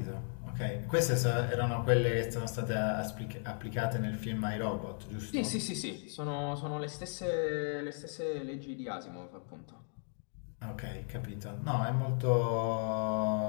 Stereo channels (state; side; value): silent; right; 54 dB below the other